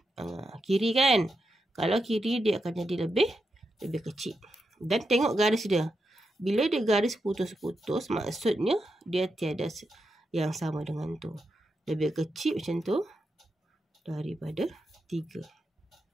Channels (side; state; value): both; normal; correlation 0.86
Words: Kiri kan? Kalau kiri dia akan jadi lebih kecil. Dan tengok garis dia. Bila dia garis putus-putus, maksudnya dia tiada yang sama dengan tu. Lebih kecil macam tu daripada 3.